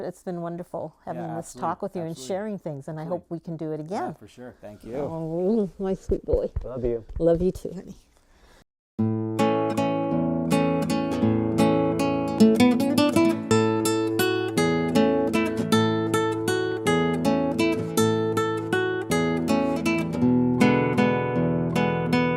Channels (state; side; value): identical; both; correlation 1.00